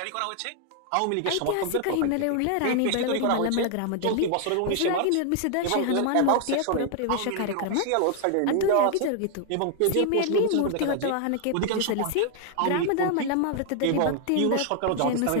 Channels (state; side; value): different; both; correlation 0.00